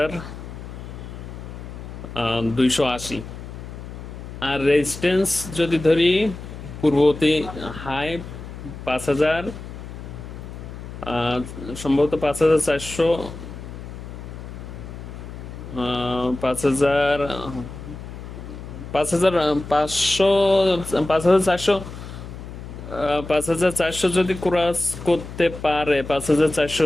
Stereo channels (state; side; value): noise; left; hum, 11 dB below the sound